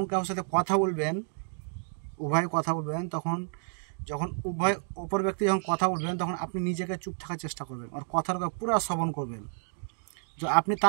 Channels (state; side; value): silent; left; 58 dB below the other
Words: কারোর সাথে কথা বলবেন, উভয় কথা বলবেন, তখন যখন অপর ব্যক্তি যখন কথা বলবেন, তখন আপনি নিজেকে চুপ থাকার চেষ্টা করবেন, আর কথাটা পুরো শ্রবণ করবেন। যদি আপনি